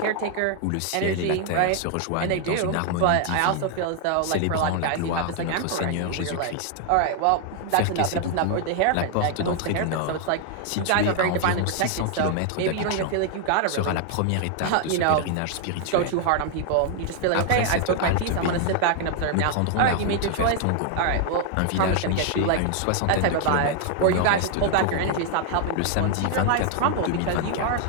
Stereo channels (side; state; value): both; different; correlation 0.00